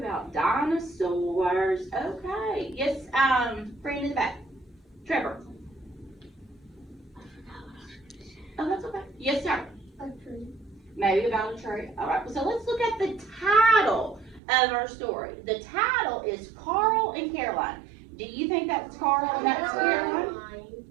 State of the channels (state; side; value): drops out; left; at 14.4 s